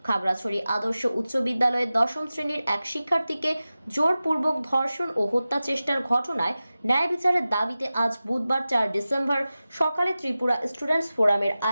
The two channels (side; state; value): both; inverted; correlation -0.96